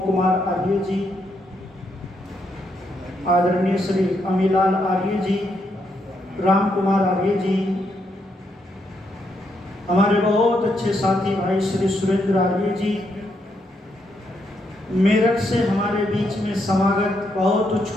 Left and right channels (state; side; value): normal; both; correlation 0.78